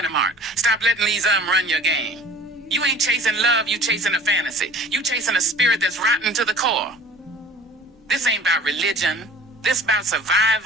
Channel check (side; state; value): both; normal; correlation 0.45